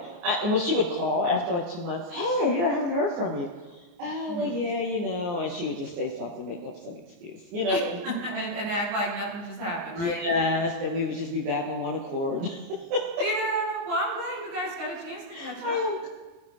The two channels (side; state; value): left; late; 29 ms